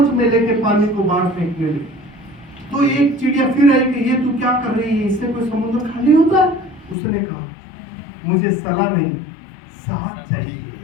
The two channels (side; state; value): right; drops out; at 7.0 s